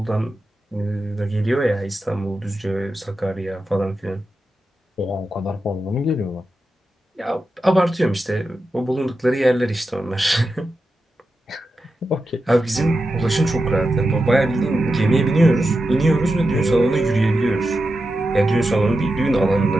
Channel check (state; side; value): normal; both; correlation 0.90